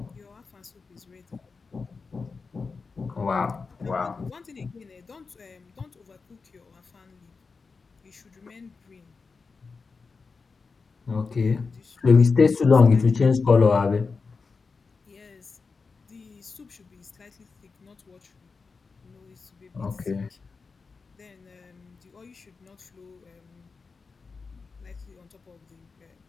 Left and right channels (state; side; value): quieter; right; 4.6 dB